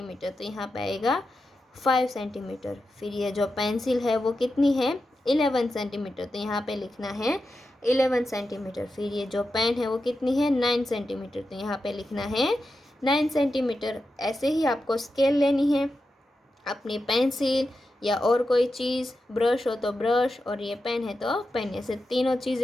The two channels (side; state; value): both; normal; correlation 0.89